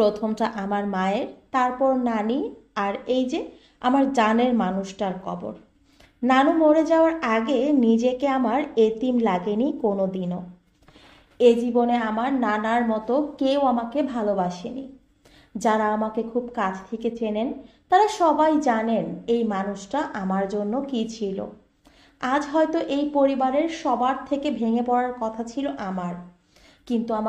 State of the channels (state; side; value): identical; both; correlation 1.00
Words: আমার মায়ের, তারপর নানি, আর এই যে আমার জানের মানুষটার কবর। নানু মরে যাওয়ার আগে নিজেকে আমার এতিম লাগেনি কোনো দিনও। এ জীবনে আমার নানার মতো কেউ আমাকে ভালোবাসেনি। যারা আমাকে খুব কাছ থেকে চেনেন তারা সবাই জানেন এই মানুষটা আমার জন্য কি ছিল। আজ হয়তো এই পরিবারের সবার থেকে ভেঙে পড়ার কথা ছিল আমার, কিন্তু